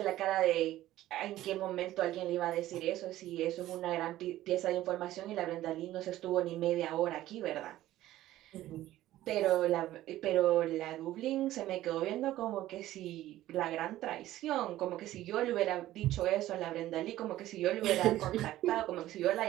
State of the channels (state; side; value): quieter; left; 14.7 dB